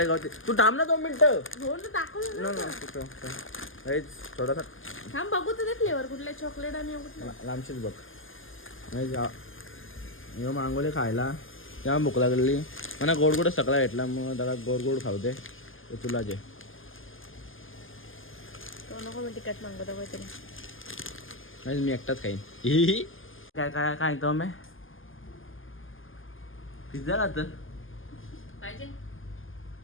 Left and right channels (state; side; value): late; right; 0.59 ms